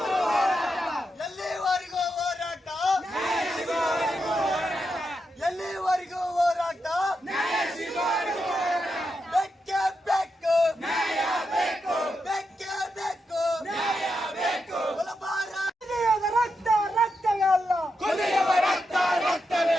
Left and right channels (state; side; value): normal; both; correlation 0.85